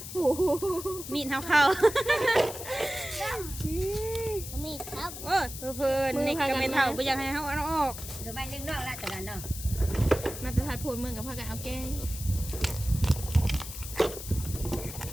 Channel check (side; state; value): left; noise; hiss, 10 dB below the sound